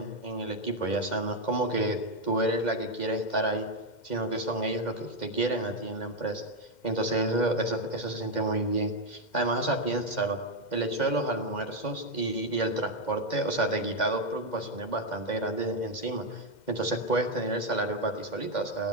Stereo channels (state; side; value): late; right; 2.1 ms